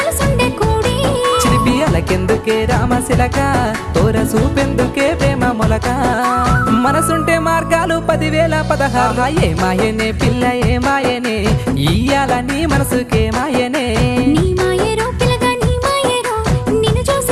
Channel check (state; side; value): identical; both; correlation 1.00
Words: కూడి చిలిపియలకెందుకే రామశిలక తోర చూపెందుకే ప్రేమ మొలక మనసుంటే మార్గాలు 10,016 ఏమాయనే పిల్ల ఏమాయనే ఇయ్యాల నీ మనసుకే మాయనే నీ మాయేరో పిల్లగా నీ మాయేరో నిన్ను